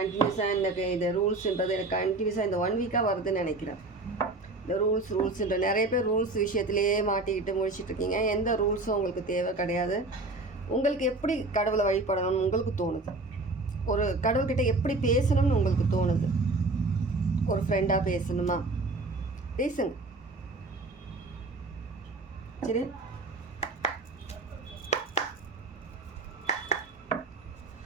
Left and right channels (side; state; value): left; quieter; 3.1 dB